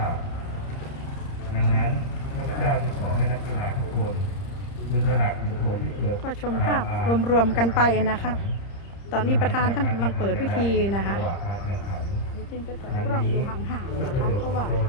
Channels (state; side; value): late; right; 30 ms